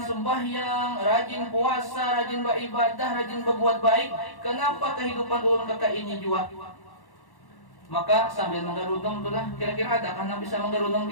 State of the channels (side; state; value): right; late; 1.1 ms